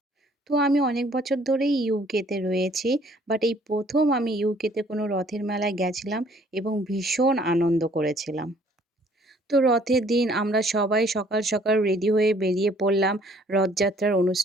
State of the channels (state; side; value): normal; both; correlation 0.59